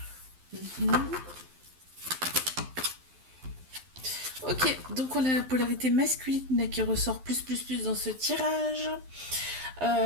Ok, donc on a la polarité masculine qui ressort plus dans ce tirage.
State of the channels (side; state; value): left; late; 12 ms